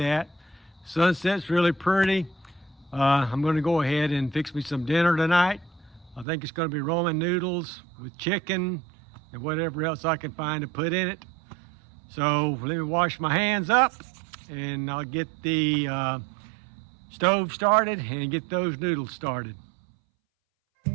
Sunset's really pretty. I'm going to go ahead and fix me some dinner tonight. I think it's going to be ramen noodles with chicken and whatever else I can find to put in it. So let me wash my hands up, and I'll get the stove started and get those noodles started.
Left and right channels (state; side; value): drops out; left; at 6.2 s